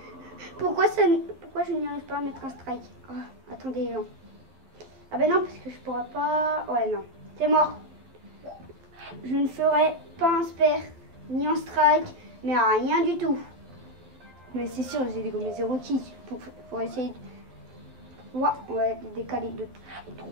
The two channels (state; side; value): late; left; 11 ms